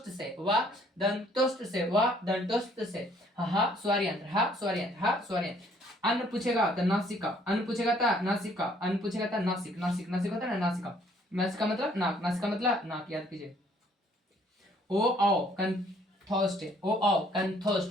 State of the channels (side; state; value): both; normal; correlation 0.62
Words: से। वाह दंतोष्ट से। वाह दंतोष्ट से। हा स्वरयंत्र। हा स्वरयंत्र। हा स्वरयंत्र। अन्न पूछेगा तो नासिका। अन्न पूछेगा था नासिका। अन्न पूछेगा था नासिक। नासिक नासिक होता है ना नासिका। नासिका मतलब नाक। नासिका मतलब नाक। याद कीजिए। ओ आओ कंथोस्ट। ओ आओ